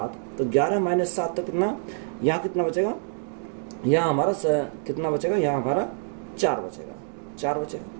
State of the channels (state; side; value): silent; left; digital silence